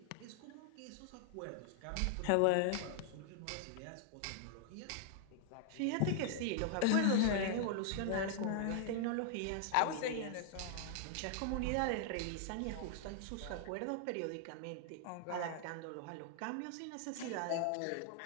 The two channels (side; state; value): both; different; correlation 0.00